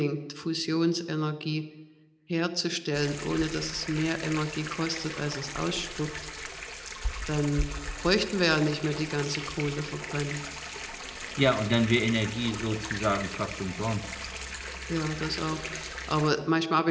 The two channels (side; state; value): both; identical; correlation 1.00